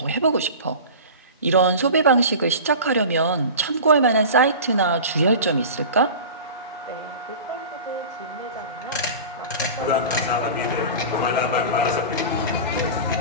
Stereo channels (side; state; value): both; inverted; correlation -0.34